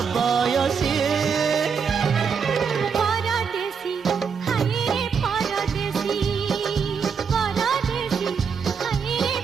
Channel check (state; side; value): quieter; left; 6.2 dB